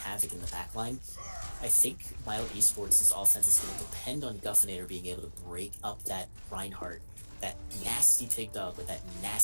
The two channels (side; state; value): both; inverted; correlation -1.00